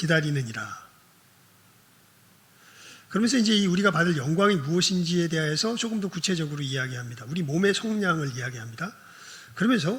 그러면서 이제 우리가 받을 영광이 무엇인지에 대해서 조금 더 구체적으로 이야기합니다. 우리 몸의 속량을 이야기합니다. 그러면서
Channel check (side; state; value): both; identical; correlation 1.00